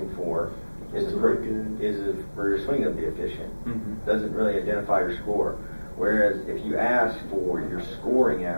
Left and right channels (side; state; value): both; inverted; correlation -1.00